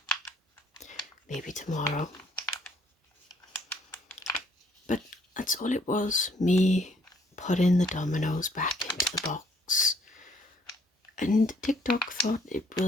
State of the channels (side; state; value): both; normal; correlation 0.64